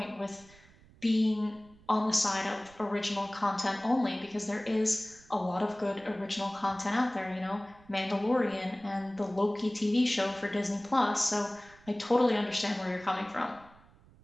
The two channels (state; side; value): noise; right; rumble, 26 dB below the sound